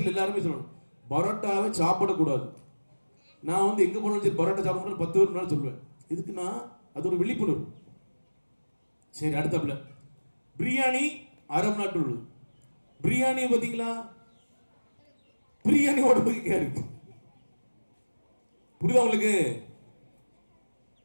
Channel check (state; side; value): inverted; both; correlation -1.00